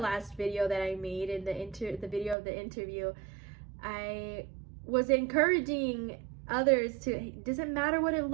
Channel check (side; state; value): left; drops out; at 2.4 s